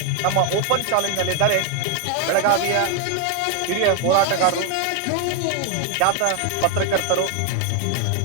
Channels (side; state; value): both; different; correlation 0.00